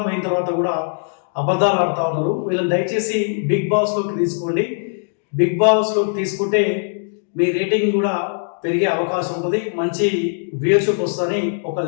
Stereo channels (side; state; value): right; silent; digital silence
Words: అయిన తర్వాత కూడా అబద్ధాలు ఆడుతూ ఉన్నారు. వీళ్ళని దయచేసి బిగ్ బాస్లోకి తీసుకోండి. బిగ్ బాస్లోకి తీసుకుంటే మీ రేటింగ్ కూడా పెరిగే అవకాశం ఉంటుంది, మంచి వ్యూయర్షిప్ వస్తుందని ఒక